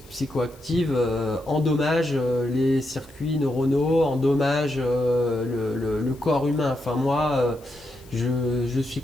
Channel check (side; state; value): left; noise; hiss, 26 dB below the sound